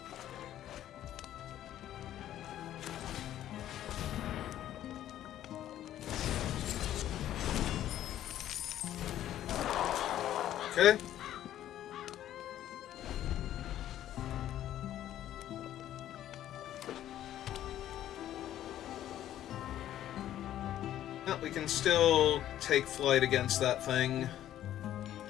okay. Well, we can still take flight against that thing.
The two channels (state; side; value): quieter; right; 12.1 dB